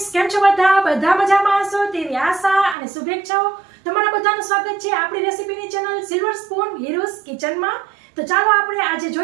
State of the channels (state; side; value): drops out; left; at 2.8 s